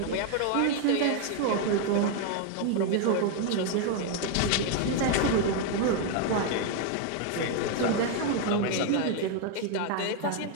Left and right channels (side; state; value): both; different; correlation 0.01